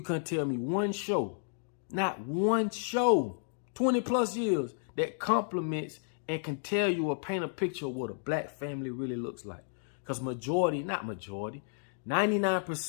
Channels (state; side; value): silent; right; digital silence